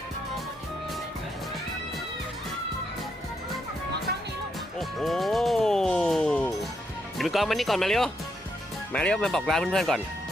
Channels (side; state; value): both; normal; correlation 0.79